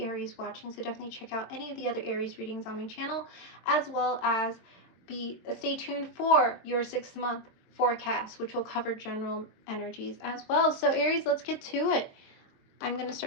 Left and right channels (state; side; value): late; right; 22 ms